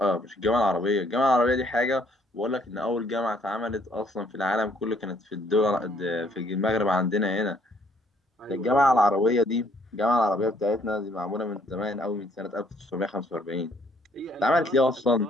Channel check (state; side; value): normal; both; correlation 0.65